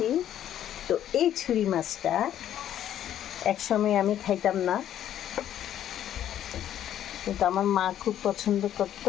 তো এই ছুরি মাছটা একসময় আমি খাইতাম না, কিন্তু আমার মা খুব পছন্দ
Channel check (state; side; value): quieter; right; 11.0 dB